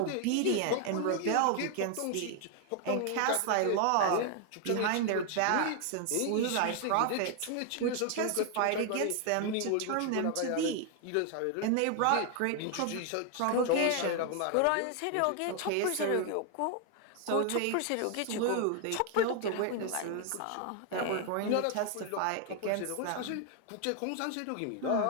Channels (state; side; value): different; both; correlation 0.00